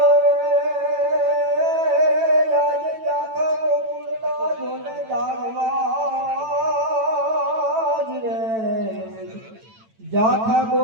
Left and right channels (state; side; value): late; left; 9.0 ms